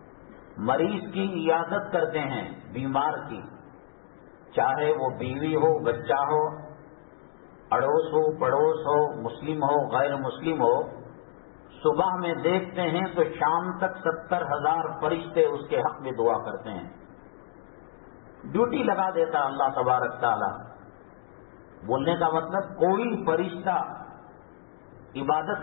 مریض کی عیادت کرتے ہیں، بیمار کی، چاہے وہ بیوی ہو، بچہ ہو، اڑوس ہو، پڑوس ہو، مسلم ہو، غیر مسلم ہو، صبح میں دیکھتے ہیں تو شام تک 70,000 فرشتے اس کے حق میں دعا کرتے ہیں۔ ڈیوٹی لگا دیتا اللہ تبارک تعالی. بولنے کا مطلب کوئی فرشتہ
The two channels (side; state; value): right; silent; digital silence